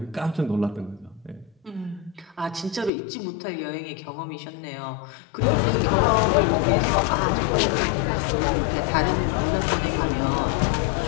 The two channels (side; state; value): right; drops out; at 2.9 s